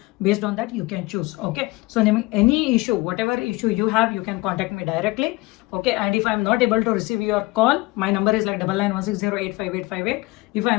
based on that you can choose. Okay, so ನಿಮಗೆ any issue, whatever issue you have, you can contact me directly. Okay, and if I am not able to receive your call, my number is like 9916085858. If I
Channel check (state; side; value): quieter; right; 22.1 dB